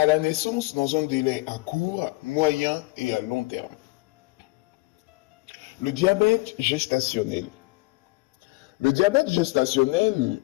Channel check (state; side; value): quieter; right; 23.2 dB